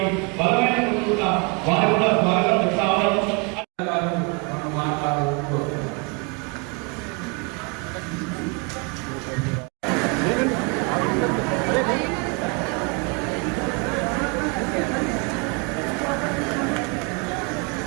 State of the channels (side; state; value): left; quieter; 32.1 dB